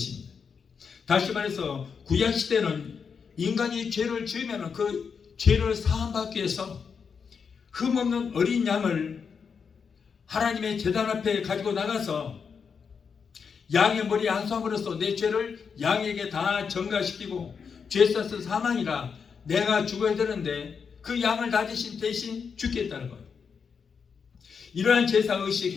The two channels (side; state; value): right; quieter; 6.1 dB